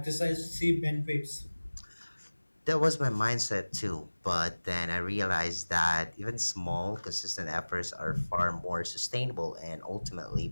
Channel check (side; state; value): both; inverted; correlation -1.00